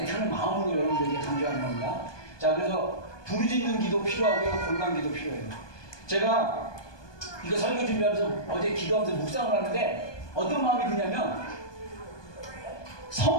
마음으로 여러분들에게 강조하는 겁니다. 자, 그래서 부르짖는 기도 필요하고요, 골방 기도 필요해요. 제가 이거 설교 준비하면서 어제 기도하면서 묵상을 하는데 어떤 마음이 드냐면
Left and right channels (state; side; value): late; right; 1.2 ms